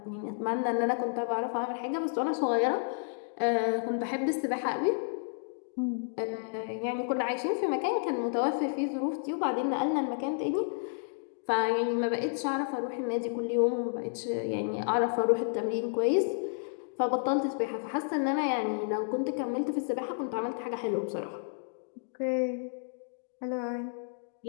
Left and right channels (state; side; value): silent; right; digital silence